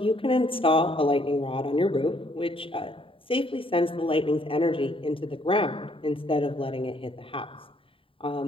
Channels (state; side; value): late; right; 0.26 ms